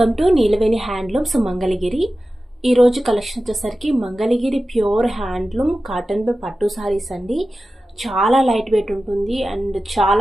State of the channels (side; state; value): both; normal; correlation 0.94